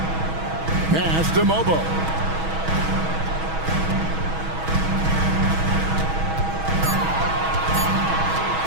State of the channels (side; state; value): left; late; 6.2 ms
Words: Pass to Mobo.